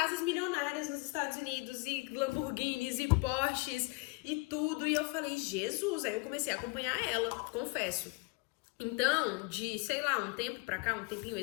milionárias nos Estados Unidos, e Lamborghinis, e Porsches, e tudo. E eu falei, Jesus! Aí eu comecei a acompanhar ela, confesso. Então, de, sei lá, um tempo pra cá, um tempinho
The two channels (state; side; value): quieter; right; 29.1 dB